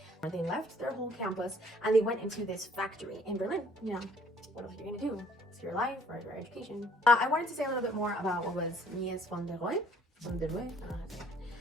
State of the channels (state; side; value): normal; both; correlation 0.58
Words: They left their whole campus and they went into this factory in Berlin. You know, what else are you gonna do? It's your life or your education. I wanted to say a little bit more about what was Mies van der Rohe. I don't know how to